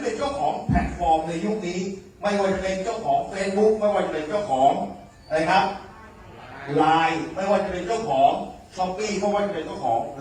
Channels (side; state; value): both; identical; correlation 1.00